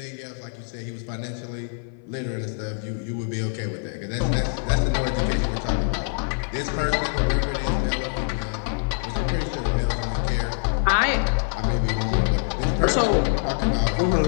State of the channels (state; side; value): silent; right; 59 dB below the other